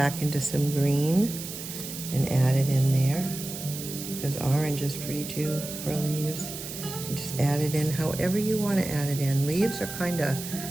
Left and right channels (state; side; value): noise; right; hiss, 9 dB below the sound